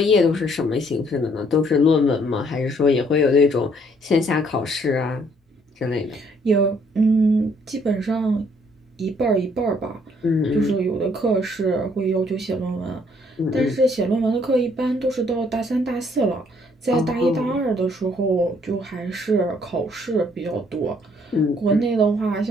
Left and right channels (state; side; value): normal; both; correlation 0.65